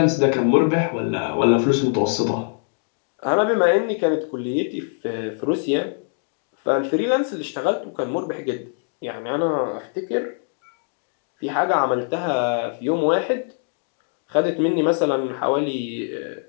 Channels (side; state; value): right; silent; 63 dB below the other